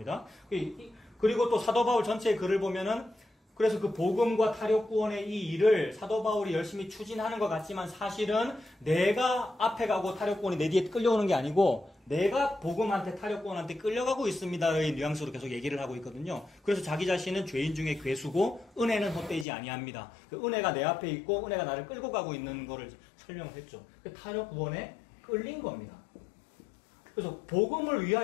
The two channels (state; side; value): drops out; right; at 19.5 s